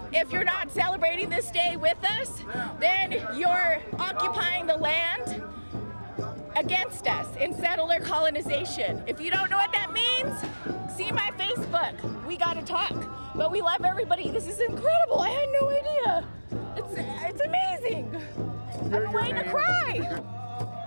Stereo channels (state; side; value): inverted; both; correlation -1.00